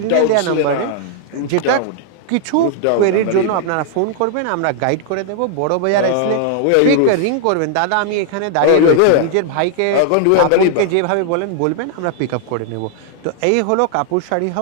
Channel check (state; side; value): different; both; correlation -0.01